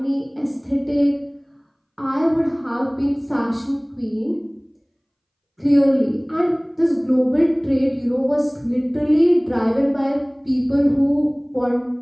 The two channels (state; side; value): identical; both; correlation 1.00